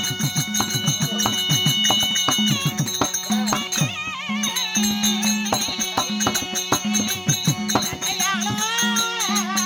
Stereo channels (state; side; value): identical; both; correlation 1.00